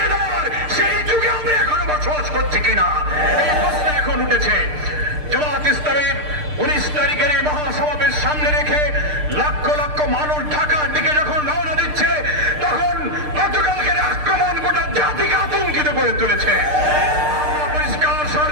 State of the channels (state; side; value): late; left; 6.6 ms